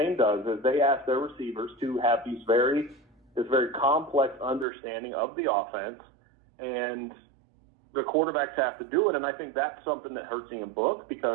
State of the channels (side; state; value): left; drops out; at 4.7 s